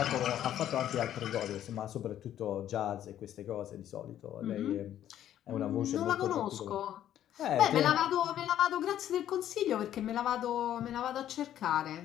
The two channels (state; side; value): quieter; right; 11.3 dB